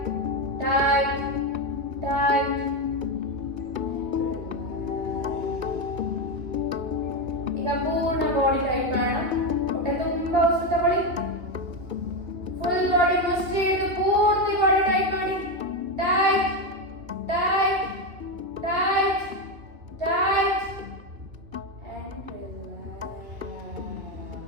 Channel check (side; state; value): left; late; 2.6 ms